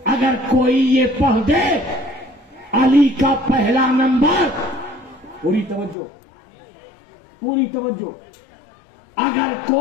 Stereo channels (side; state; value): right; drops out; at 6.0 s